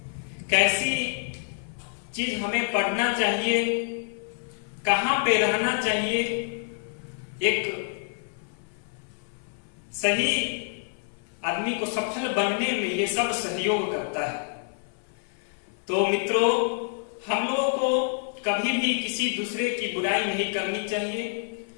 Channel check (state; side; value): silent; right; 56 dB below the other